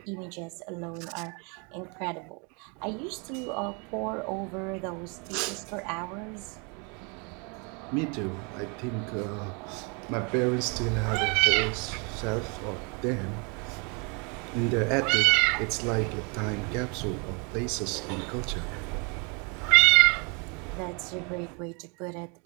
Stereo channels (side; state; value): left; quieter; 33.3 dB